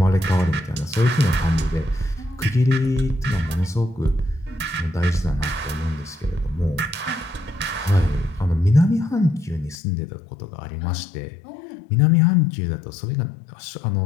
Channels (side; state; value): right; drops out; at 9.8 s